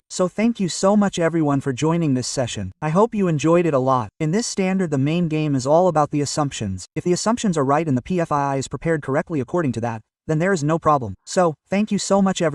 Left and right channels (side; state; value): both; identical; correlation 1.00